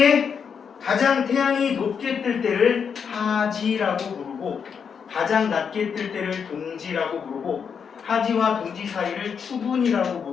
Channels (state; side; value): quieter; right; 6.7 dB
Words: 가장 태양이 높게 뜰 때를 하지라고 부르고 가장 낮게 뜰 때를 동지라고 부르고 하지와 동지 사이를 추분이라고